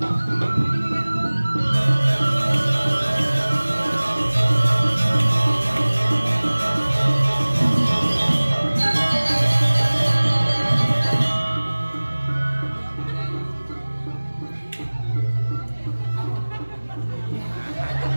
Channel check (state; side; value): inverted; both; correlation -1.00